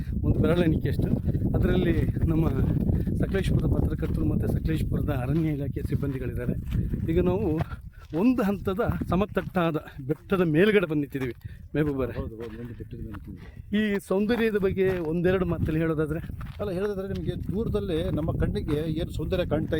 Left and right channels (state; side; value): identical; both; correlation 1.00